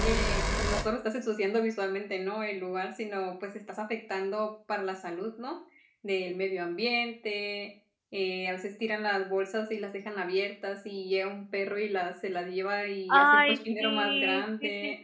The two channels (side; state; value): both; identical; correlation 1.00